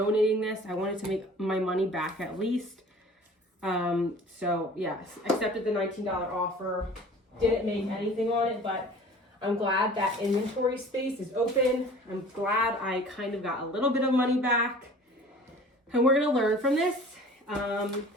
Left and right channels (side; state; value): both; normal; correlation 0.45